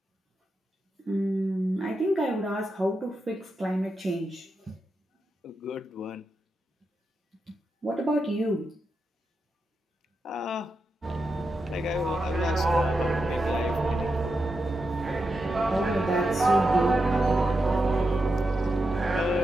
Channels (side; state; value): both; normal; correlation 0.87